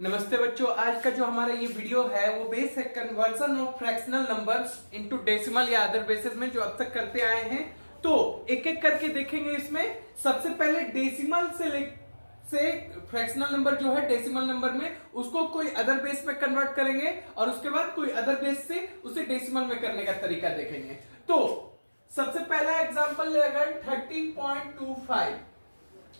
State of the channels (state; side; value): inverted; both; correlation -1.00